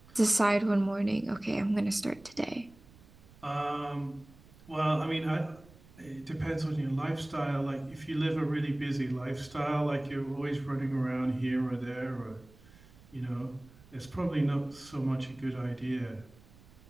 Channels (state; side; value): noise; right; rumble, 24 dB below the sound